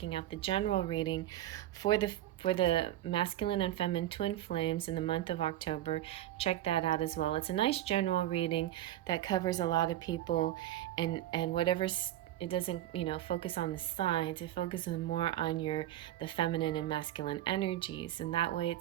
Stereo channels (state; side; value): quieter; left; 13.4 dB